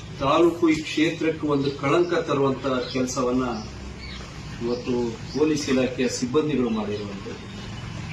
ತಾಲೂಕು, ಈ ಕ್ಷೇತ್ರಕ್ಕೆ ಒಂದು ಕಳಂಕ ತರುವಂತ ಕೆಲಸವನ್ನ ಇವತ್ತು ಪೊಲೀಸ್ ಇಲಾಖೆಯ ಸಿಬ್ಬಂದಿಗಳು ಮಾಡಿರುವಂಥದ್ದು.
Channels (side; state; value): both; identical; correlation 1.00